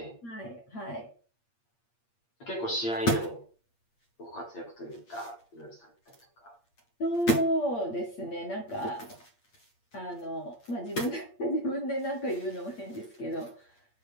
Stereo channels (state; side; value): late; right; 8.6 ms